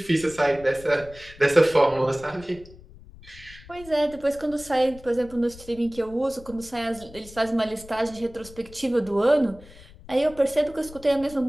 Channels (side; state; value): left; noise; rumble, 20 dB below the sound